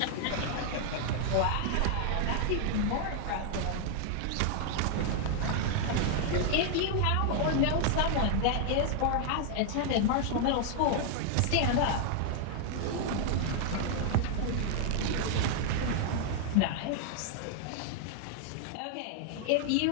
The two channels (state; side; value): different; both; correlation 0.00